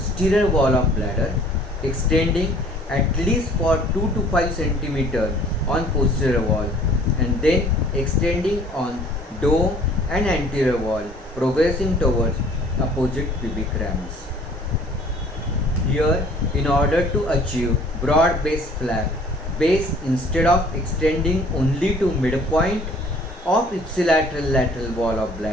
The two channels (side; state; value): both; normal; correlation 0.54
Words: wall of bladder, extending at least for 2 to 5 cm on posterior wall, and then extending on dome and anterior wall, progressing towards opposite pubic ramus. Here, in order to achieve broad base flap, base instead of extending only to midpoint of ipsilateral lateral wall of